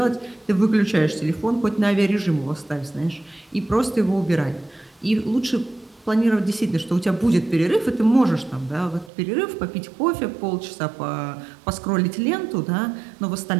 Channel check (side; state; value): left; drops out; at 9.1 s